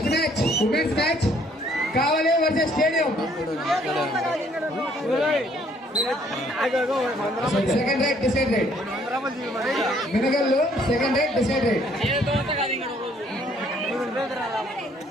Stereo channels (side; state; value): both; normal; correlation 0.64